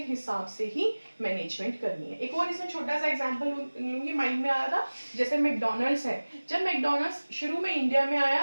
हिसाब से ही मैनेजमेंट करनी है। एक और इसमें छोटा सा एग्जांपल लूंगी, माइंड में आया था, जैसे मैकडॉनल्ड्स है। जब मैकडॉनल्ड्स शुरू में इंडिया में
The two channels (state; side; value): inverted; both; correlation -1.00